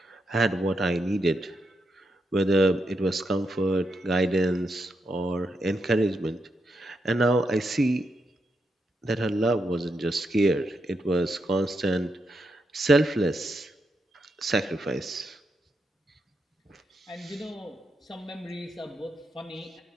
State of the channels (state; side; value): normal; both; correlation 0.83